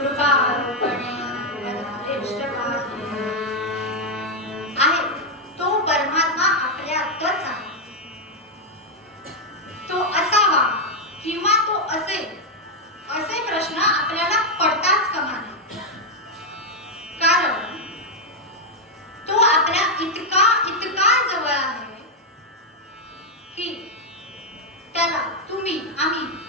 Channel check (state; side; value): normal; both; correlation 0.00